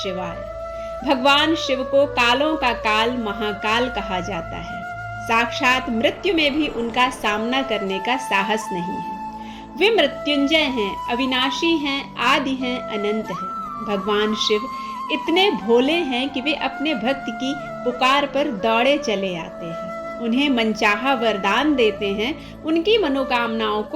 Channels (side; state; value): both; identical; correlation 1.00